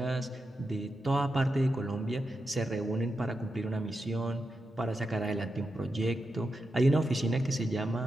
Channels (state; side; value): normal; both; correlation 0.88